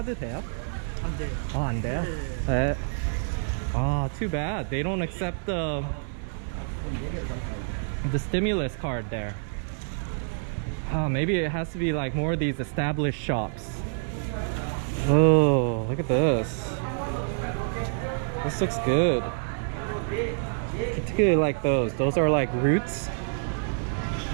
돼요? 안 돼요. 아, 안 돼요? 네. Ah, too bad. They don't accept the stimulus card there. Maybe it has to be like more of these established shops. Oh, look at this. This looks good. Particularly like those. Those are like roots.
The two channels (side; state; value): left; silent; digital silence